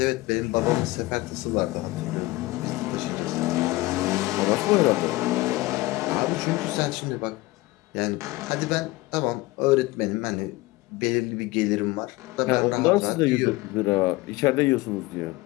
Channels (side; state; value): right; quieter; 20.2 dB